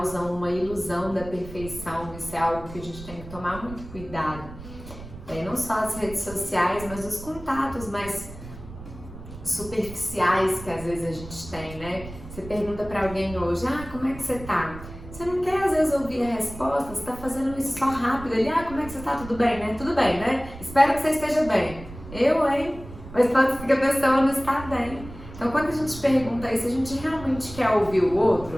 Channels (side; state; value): right; noise; rumble, 14 dB below the sound